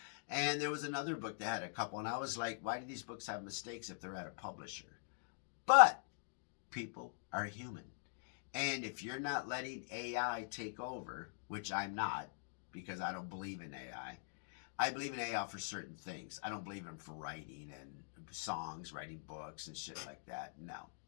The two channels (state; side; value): silent; right; digital silence